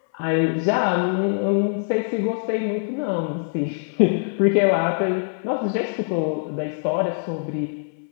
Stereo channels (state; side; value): silent; right; 61 dB below the other